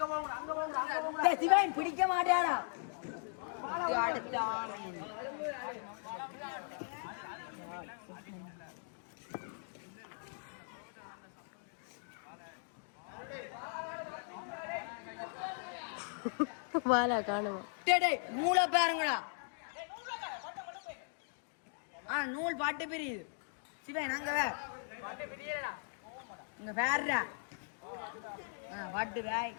சிவன் பிடிக்க மாட்டாரா வாலா காணுமா நூலை பாருங்கடா நூல் பாட்டு பிரியுது சிவன் அங்க இங்க வேறா பாட்டு ராய்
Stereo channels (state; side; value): silent; right; digital silence